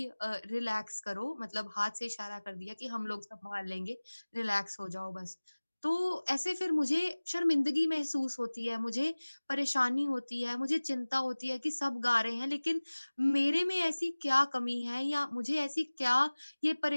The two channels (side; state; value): both; inverted; correlation -1.00